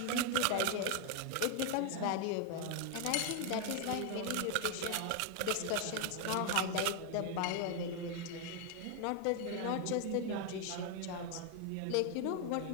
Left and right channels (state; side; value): different; both; correlation 0.01